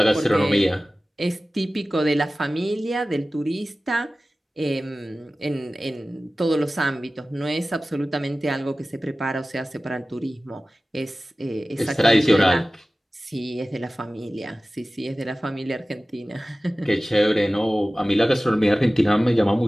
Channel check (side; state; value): both; normal; correlation 0.97